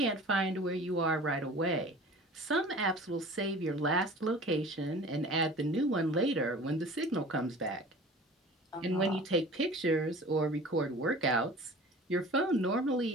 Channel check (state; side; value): normal; both; correlation 0.42